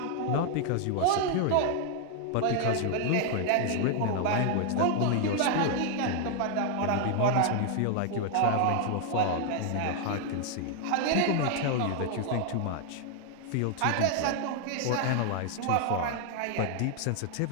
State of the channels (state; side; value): different; both; correlation 0.00